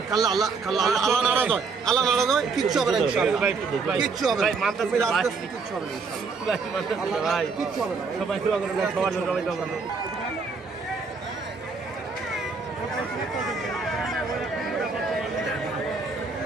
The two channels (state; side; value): quieter; left; 4.6 dB